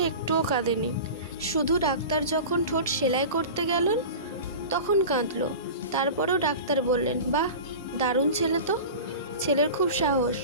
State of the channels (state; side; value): inverted; both; correlation -0.33